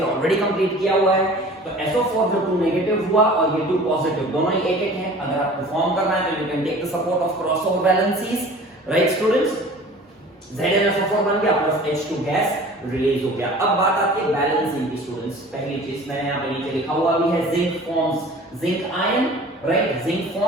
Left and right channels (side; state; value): both; normal; correlation 0.44